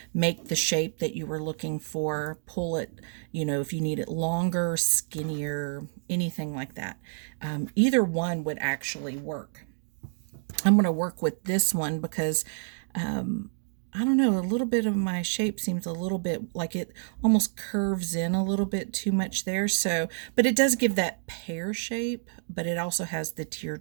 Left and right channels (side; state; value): left; silent; digital silence